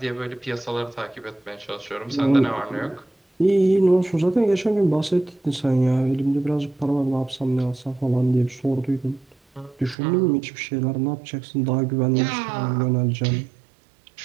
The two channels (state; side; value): drops out; left; at 10.0 s